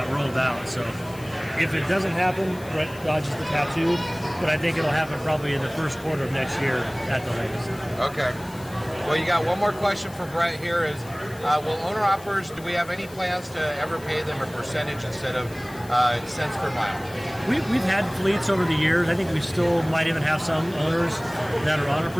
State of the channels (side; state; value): left; noise; hiss, 20 dB below the sound